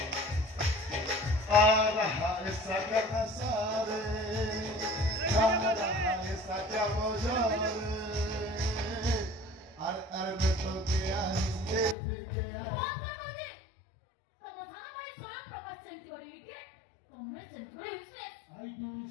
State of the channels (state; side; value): drops out; right; at 12.0 s